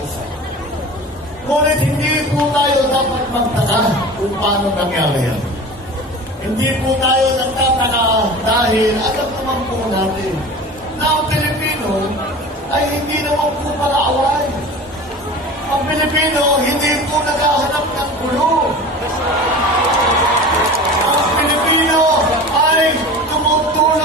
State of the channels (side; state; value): both; normal; correlation 0.36